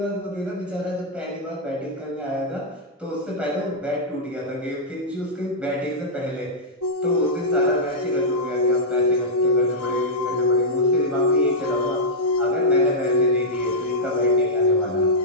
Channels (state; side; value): normal; both; correlation -0.08